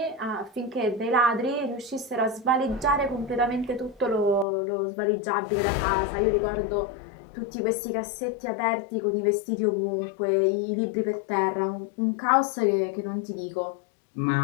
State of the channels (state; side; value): drops out; right; at 4.5 s